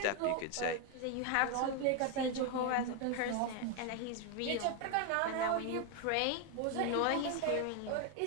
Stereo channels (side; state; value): both; different; correlation 0.01